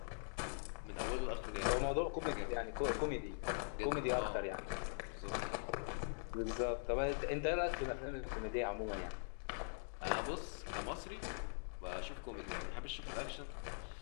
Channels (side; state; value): right; silent; digital silence